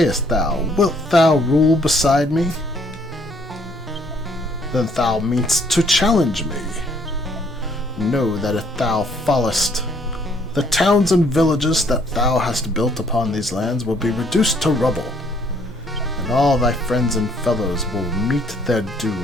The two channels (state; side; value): normal; both; correlation 0.65